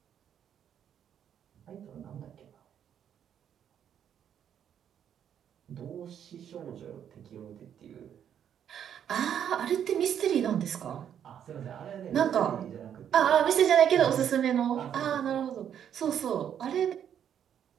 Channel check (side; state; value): left; quieter; 9.1 dB